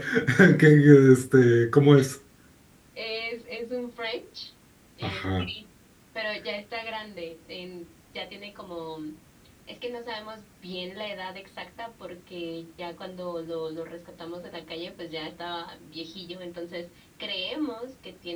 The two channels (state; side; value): identical; both; correlation 1.00